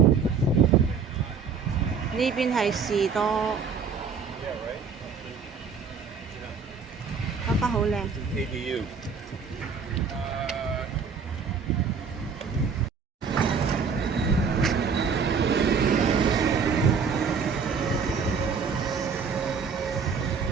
呢邊係士多，花花好靚。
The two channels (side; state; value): left; quieter; 5.7 dB